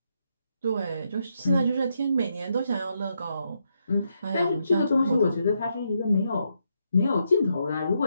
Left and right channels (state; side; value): inverted; both; correlation -0.80